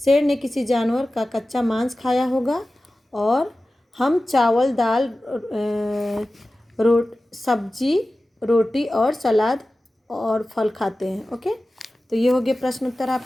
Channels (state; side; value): normal; both; correlation 0.95